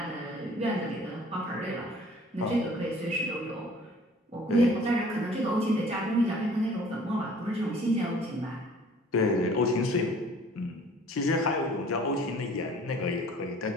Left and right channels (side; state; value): both; normal; correlation 0.51